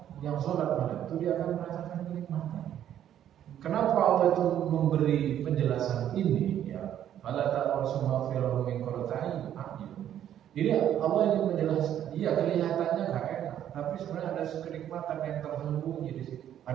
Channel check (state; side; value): quieter; left; 10.6 dB